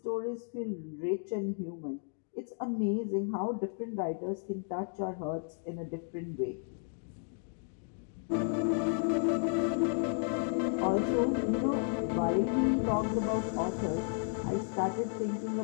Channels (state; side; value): silent; right; 56 dB below the other